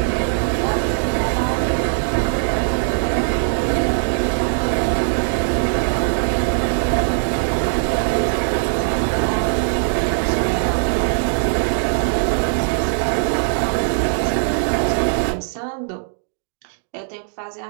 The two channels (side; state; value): left; silent; digital silence